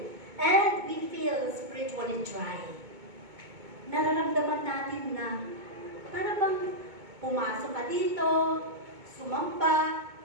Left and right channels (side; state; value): left; late; 2.2 ms